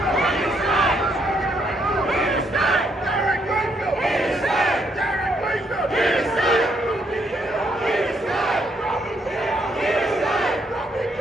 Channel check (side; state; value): both; normal; correlation 0.73